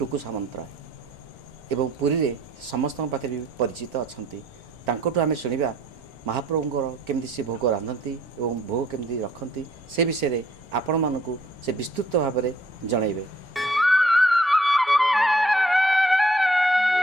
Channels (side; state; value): both; normal; correlation 0.62